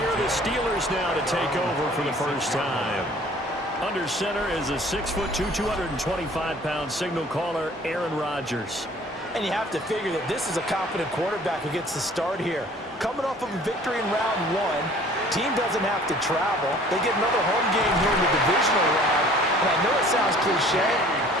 are the Steelers now to take over for the first time. Under center is a 6'2", 225-pound signal caller, Aaron Rodgers. And you have to figure that this is a confident quarterback who gets the start here. Coming off of a victory in round one, team doesn't have to travel. They get another home game here in the divisional round. And I know it sounds cliche,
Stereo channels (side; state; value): both; normal; correlation 0.52